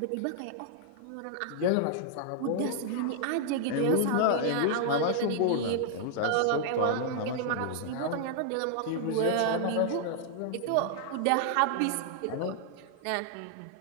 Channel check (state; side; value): different; both; correlation -0.01